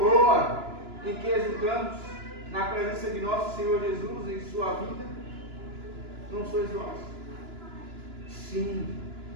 em que exultamos na presença de nosso Senhor Jesus em sua vida? Não sois vós? Sim,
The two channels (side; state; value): left; late; 2.9 ms